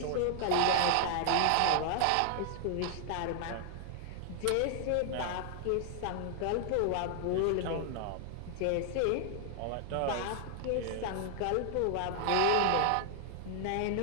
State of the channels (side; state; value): both; different; correlation 0.00